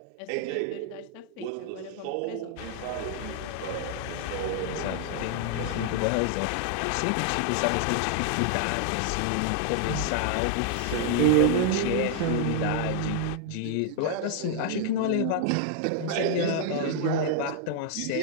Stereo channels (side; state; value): both; different; correlation 0.00